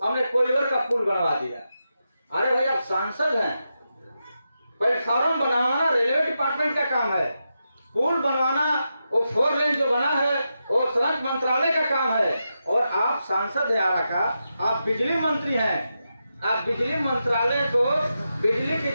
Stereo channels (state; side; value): inverted; both; correlation -0.88